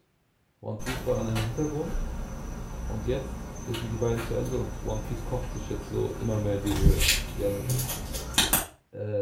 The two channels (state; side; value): identical; both; correlation 1.00